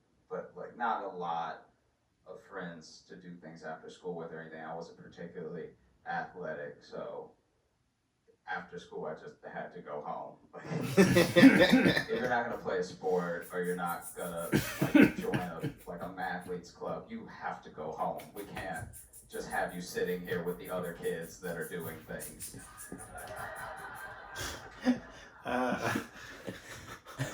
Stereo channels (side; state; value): both; identical; correlation 1.00